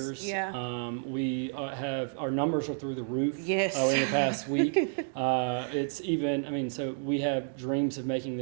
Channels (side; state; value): left; silent; digital silence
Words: Yeah. We have, our numbers are through the roof. Yes. In the past week. It's even, so we have dreams of making